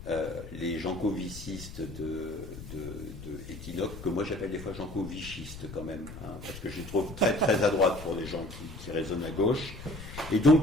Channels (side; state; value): left; noise; rumble, 12 dB below the sound